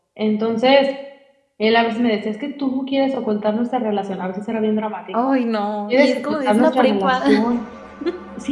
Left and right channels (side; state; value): both; identical; correlation 1.00